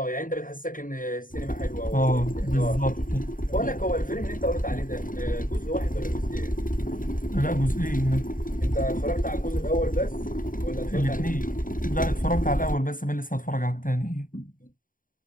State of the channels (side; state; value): right; late; 0.39 ms